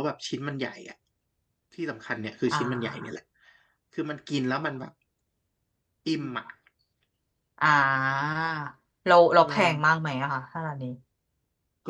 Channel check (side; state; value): both; identical; correlation 1.00